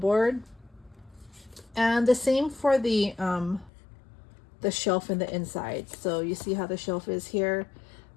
And the same for the shelf in the inside. So you see how the shelf is here.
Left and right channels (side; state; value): right; drops out; at 3.7 s